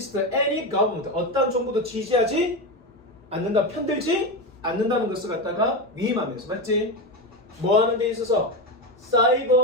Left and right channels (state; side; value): normal; both; correlation 0.16